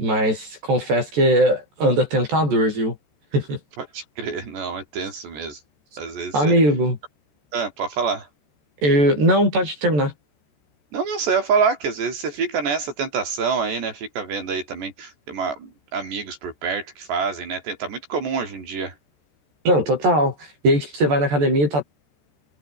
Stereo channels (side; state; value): left; late; 14 ms